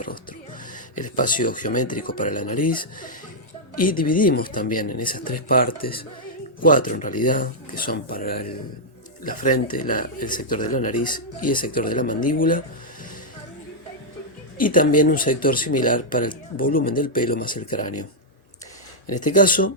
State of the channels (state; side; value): normal; both; correlation -0.06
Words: rostro, el espacio geométrico para la nariz, y dividimos también en esas 3 partes, 4 en realidad, que son para la frente, el sector de la nariz y el sector de la mandíbula, y también un sector similar para el volumen del pelo más el cráneo. En este